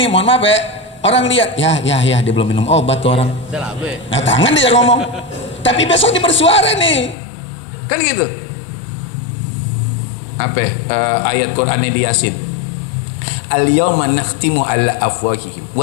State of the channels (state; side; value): drops out; right; at 7.2 s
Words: nih, mohon maaf ya, orang lihat ya dia belum minum obat tuh orang. Nah tangan dia ngomong, tapi besok dia bersuara nih, kan gitu. Ayat Quran di Yasin, al-yawma nakhtimu ala afwahihim